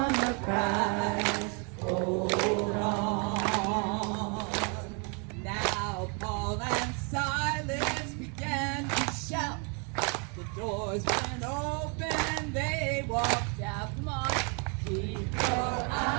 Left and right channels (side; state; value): left; quieter; 36.1 dB